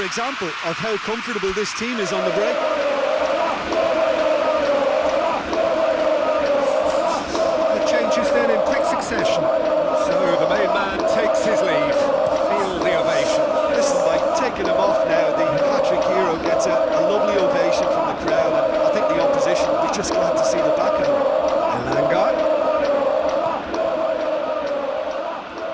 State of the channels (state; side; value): identical; both; correlation 1.00